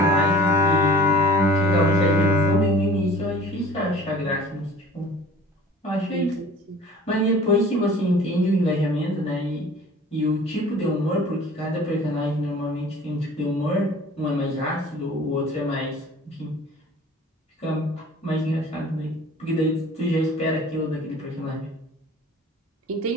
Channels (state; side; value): normal; both; correlation 0.46